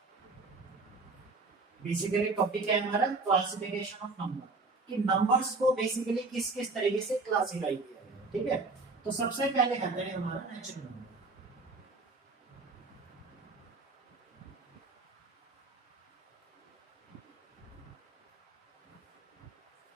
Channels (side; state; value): left; quieter; 3.6 dB